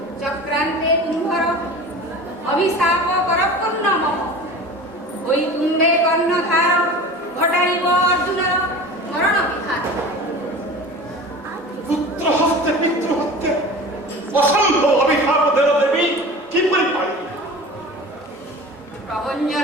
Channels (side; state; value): both; normal; correlation 0.36